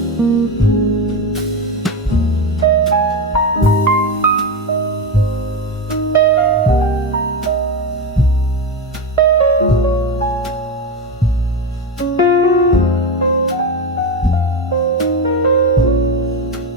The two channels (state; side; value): normal; both; correlation 0.16